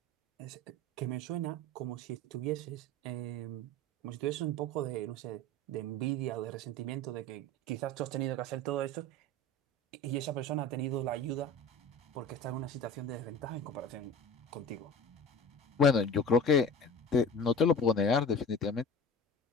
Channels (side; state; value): both; normal; correlation 0.36